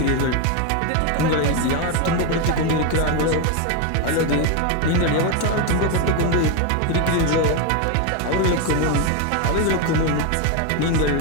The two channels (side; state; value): both; different; correlation 0.02